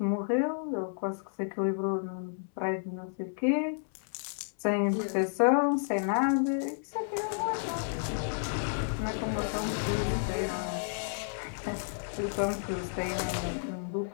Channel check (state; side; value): silent; right; 57 dB below the other